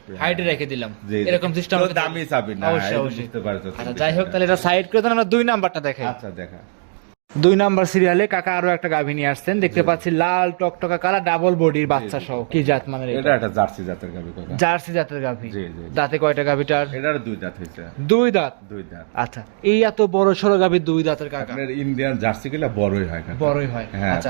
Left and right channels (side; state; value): left; silent; digital silence